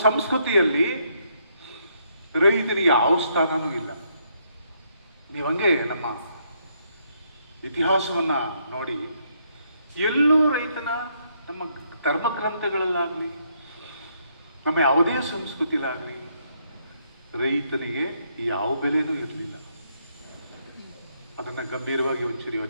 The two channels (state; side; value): inverted; both; correlation -0.73